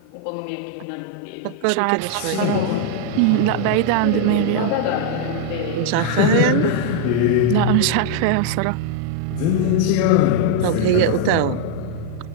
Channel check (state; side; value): different; both; correlation 0.00